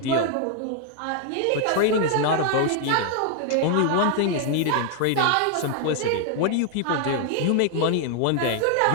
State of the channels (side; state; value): both; different; correlation 0.00